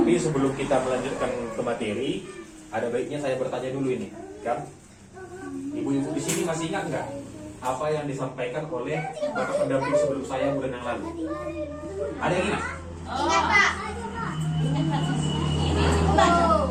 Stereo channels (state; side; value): identical; both; correlation 1.00